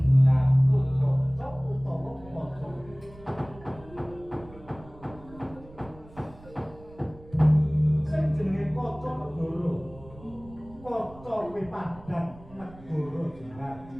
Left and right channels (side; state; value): right; noise; rumble, 21 dB below the sound